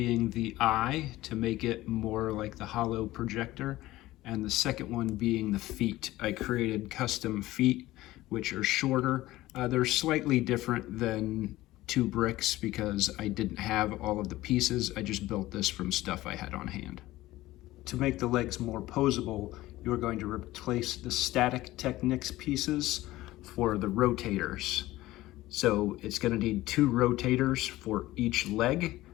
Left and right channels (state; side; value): quieter; right; 17.0 dB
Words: the eye to make it more like the hollow projector, and the second one being the feet. I created custom feet which are shorter. They're slightly different than 2Bricks because I didn't have all of the pieces. I just built this from stuff I had on hand. To make the legs more posable, you're going to replace the static Technics pieces for the rotators. So it's going to need 2 rotators for each leg,